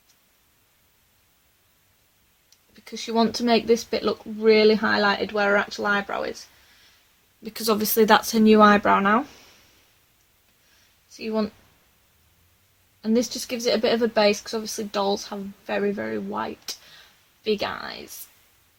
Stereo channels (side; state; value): both; identical; correlation 1.00